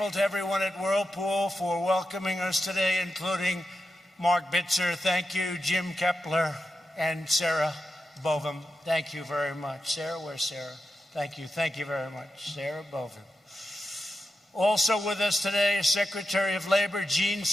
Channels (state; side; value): normal; both; correlation 0.89